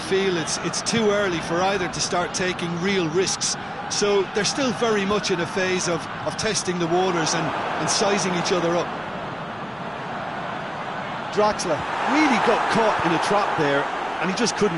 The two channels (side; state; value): left; noise; rumble, 29 dB below the sound